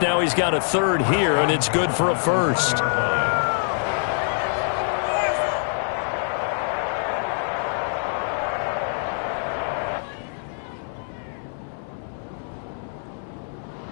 he's got a 3rd here, and it's good for a 1st.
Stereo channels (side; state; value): right; silent; digital silence